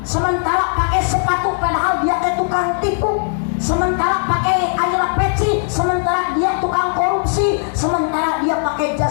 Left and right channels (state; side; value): silent; right; digital silence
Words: Sementara pakai sepatu padahal dia teh tukang tipu. Sementara pakai ayeuna peci, sementara dia tukang korupsi. Sementara dia pakai